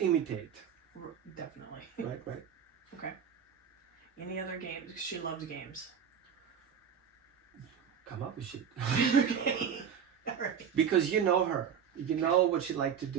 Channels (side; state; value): left; quieter; 7.8 dB